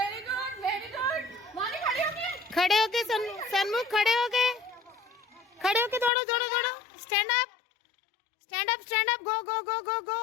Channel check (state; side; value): drops out; right; at 6.1 s